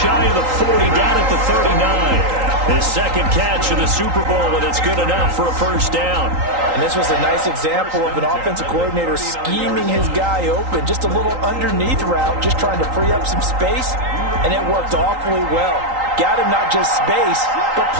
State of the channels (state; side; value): late; left; 3.8 ms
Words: shy of the 40, down at the 39. His second catch of the Super Bowl, and it's good enough for a first down. And this was a nice example of an offensive coordinator scheming his guy open. Just a little underneath route, just trying to free up some space, and it worked awfully well. Got him not just space, but